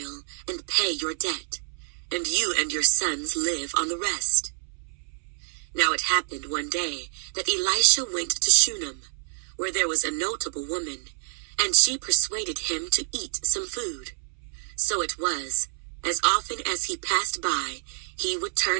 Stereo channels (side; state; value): left; silent; 60 dB below the other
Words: and pay your debt, and you and your sons live on the rest." Now it happened one day that Elisha went to Shunem, where there was a notable woman, and she persuaded him to eat some food. So it was, as often as he passed by, he would